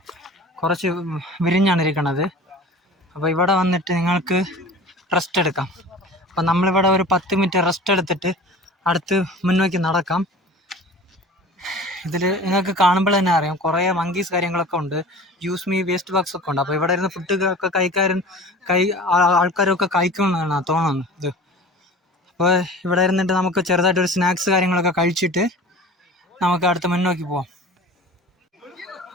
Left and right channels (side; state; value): both; normal; correlation 0.40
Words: കുറച്ച് വിരിഞ്ഞാണ് ഇരിക്കണത്. അപ്പോൾ ഇവിടെ വന്നിട്ട് നിങ്ങൾക്ക് റെസ്റ്റ് എടുക്കാം. അപ്പം നമ്മളിവിടെ ഒരു 10 മിനിറ്റ് റെസ്റ്റ് എടുത്തിട്ട് അടുത്ത് മുന്നോക്കി നടക്കാം. ഇതിൽ നിങ്ങൾക്ക് കാണുമ്പോൾ തന്നെ അറിയാം കുറേ മങ്കീസ് കാര്യങ്ങളൊക്കെ ഉണ്ട്. യൂസ് മീ വേസ്റ്റ് ബോക്സ് ഒക്കെ ഉണ്ട്. അപ്പോൾ ഇവിടെ ഇരുന്ന് ഫുഡ് ആൾക്കാരൊക്കെ കഴിക്കണമെന്നാണ് തോന്നുന്നത് ഇത്. അപ്പോൾ ഇവിടെ ഇരുന്നിട്ട് നമുക്ക് ചെറുതായിട്ടൊരു സ്നാക്സ് കാര്യങ്ങളൊക്കെ കഴിച്ചിട്ട് നമുക്ക് അടുത്ത് മുന്നോക്കി പോവാം.